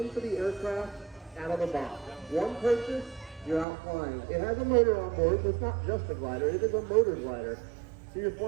the aircraft out of the box. One purchase, you're out flying. It has a motor on board, so it's not just a glider, it is a motor glider. So you're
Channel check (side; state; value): left; drops out; at 3.7 s